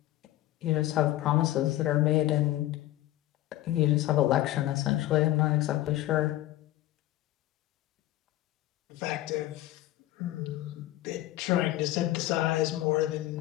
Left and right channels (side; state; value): right; quieter; 15.3 dB